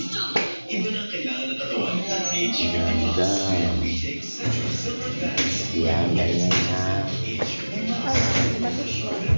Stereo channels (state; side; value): inverted; both; correlation -1.00